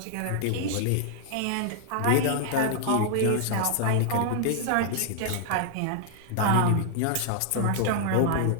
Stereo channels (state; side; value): different; both; correlation -0.01